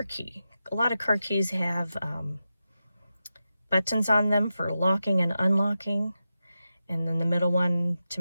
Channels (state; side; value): inverted; both; correlation -0.90